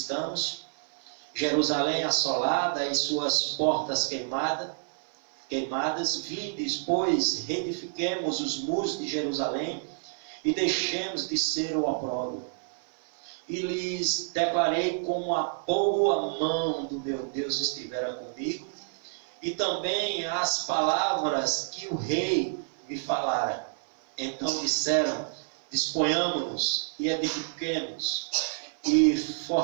Jerusalém assolada e suas portas queimadas. Vindes, pois, reedifiquemos os muros de Jerusalém e deixemos de ser o opróbrio. E lhes declarei como a boa mão do meu Deus estivera comigo, e também as palavras que o rei me falara. Então disseram: disponhamos-nos e edifiquemos, e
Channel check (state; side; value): silent; left; 55 dB below the other